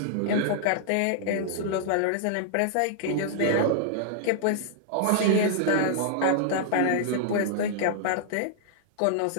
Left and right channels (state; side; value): different; both; correlation -0.01